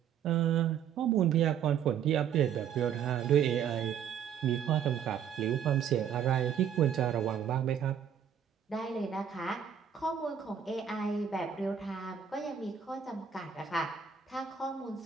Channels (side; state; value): left; quieter; 8.3 dB